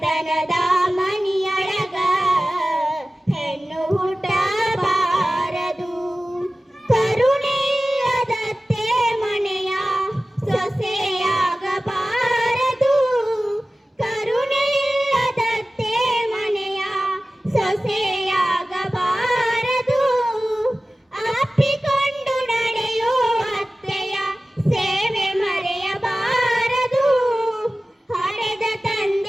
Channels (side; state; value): both; normal; correlation 0.96